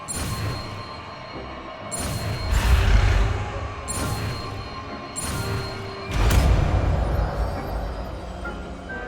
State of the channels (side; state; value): both; identical; correlation 1.00